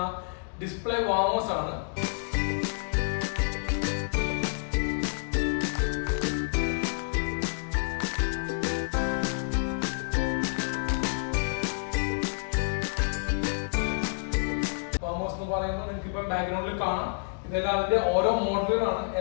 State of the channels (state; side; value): silent; right; 59 dB below the other